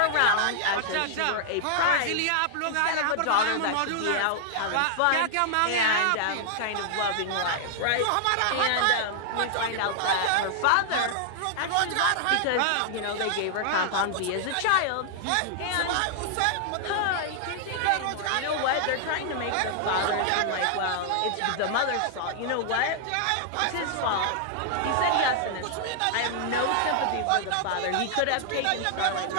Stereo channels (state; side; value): different; both; correlation -0.01